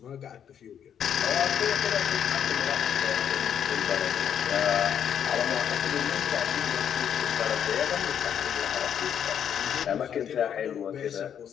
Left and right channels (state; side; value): quieter; right; 8.8 dB